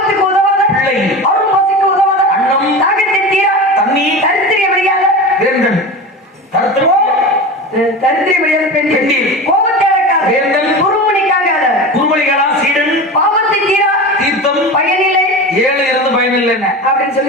உதவாத பிள்ளை, அவரும் பசிக்கு உதவாத அன்னம், தாகத்தை தீரா தண்ணீர், தரித்திரிய முடியாத வேந்தன், தரித்திரிய முடியாத பெண், கோபத்தை அடக்காத வேந்தன், குருமணிக்காகாத குருமணிகளா சீடன், பாவத்தை தீரா தீர்த்தம், பயனில்லை 7 இருந்து பயனில்லை அப்படின்னு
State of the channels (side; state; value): both; normal; correlation 0.28